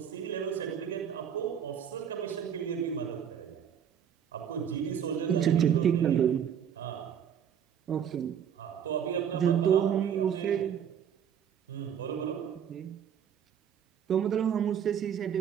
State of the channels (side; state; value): left; quieter; 8.5 dB